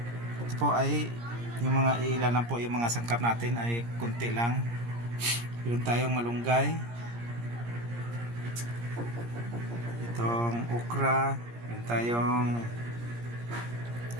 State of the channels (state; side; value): late; left; 17 ms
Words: Ito po ay yung mga ilan lang po, yung mga sangkap natin ay kunti lang. Meron tayong malunggay, itong okra, meron tayong